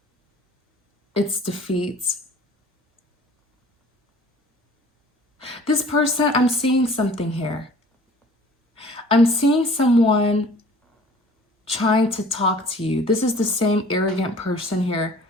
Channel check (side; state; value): both; normal; correlation 0.50